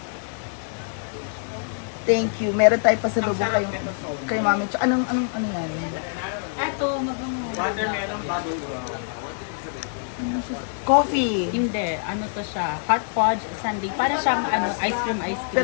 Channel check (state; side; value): silent; right; digital silence